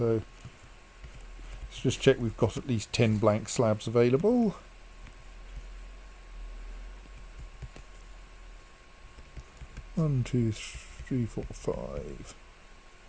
let's just check we've got at least 10 blank slabs available. One, 2, 3, 4, 5,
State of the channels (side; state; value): both; identical; correlation 1.00